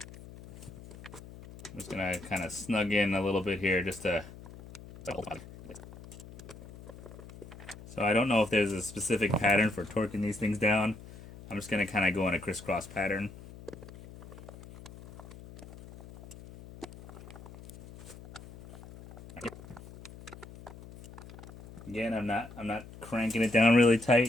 just gonna kind of snug in a little bit here just to. So I don't know if there's a specific pattern for torquing these things down. I'm just gonna kind of go in a crisscross pattern. Again, I'm not cranking it down really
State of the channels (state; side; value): noise; left; hum, 17 dB below the sound